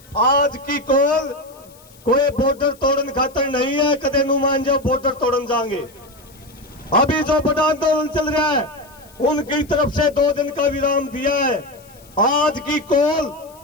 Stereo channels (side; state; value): left; noise; hiss, 26 dB below the sound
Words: आज की कॉल कोई बॉर्डर तोड़न खातर नहीं है, कदे नु मान जाओ बॉर्डर तोड़न जाएंगे। अभी जो बड़ा आंदोलन चल रहा है उनकी तरफ से 2 दिन का विराम दिया है। आज की कॉल